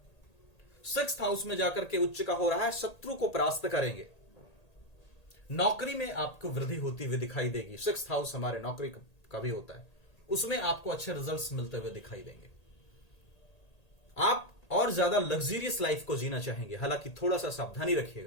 6th हाउस में जाकर के उच्च का हो रहा है, शत्रु को परास्त करेंगे। नौकरी में आपको वृद्धि होती हुई दिखाई देगी। 6th हाउस हमारे नौकरी का भी होता है, उसमें आपको अच्छे रिजल्ट्स मिलते हुए दिखाई देंगे। आप और और ज्यादा लग्जरियस लाइफ को जीना चाहेंगे, हालांकि थोड़ा सा सावधानी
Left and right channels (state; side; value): late; right; 1.8 ms